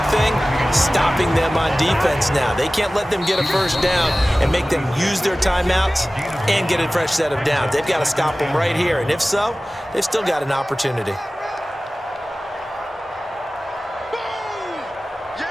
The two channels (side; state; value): both; normal; correlation 0.97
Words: thing, stopping them on defense now. They can't let them get a first down and make them use their timeouts and get a fresh set of downs. They've got to stop them right here. And if so, they've still got an opportunity.